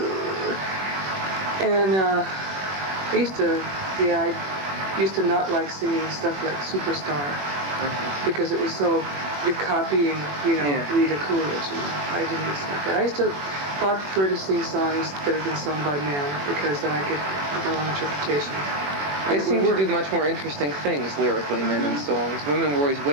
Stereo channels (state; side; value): late; left; 21 ms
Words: And I used to not like singing stuff like Superstar, because it was so, you're copying, Rita Coolidge, I didn't like that. I used to prefer to sing songs that have been sung by men, because then I could have my own interpretation. They seem to do much more interesting things lyrically, men in songs. Women were always